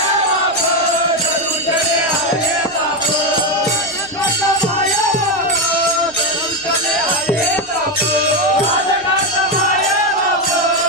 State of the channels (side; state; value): right; noise; rumble, 28 dB below the sound